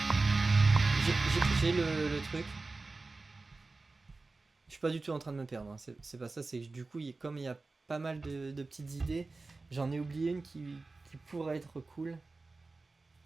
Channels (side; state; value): left; quieter; 3.6 dB